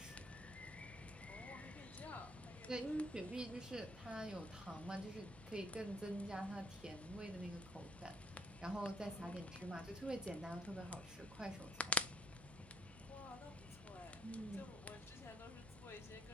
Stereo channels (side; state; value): right; noise; hum, 17 dB below the sound